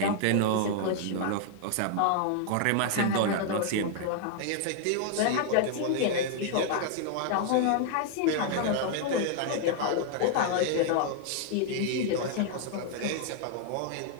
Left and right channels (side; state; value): both; different; correlation 0.00